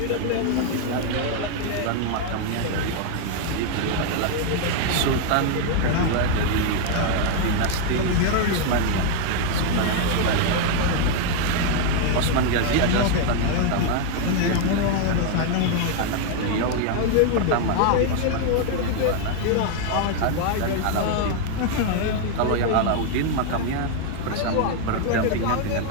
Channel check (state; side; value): different; both; correlation 0.00